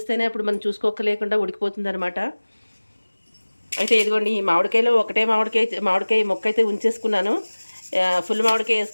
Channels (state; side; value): inverted; both; correlation -1.00